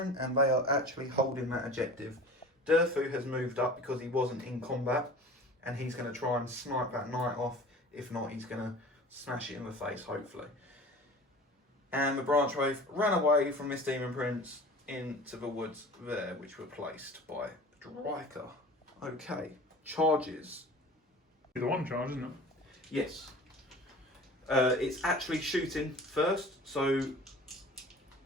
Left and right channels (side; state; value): both; normal; correlation 0.40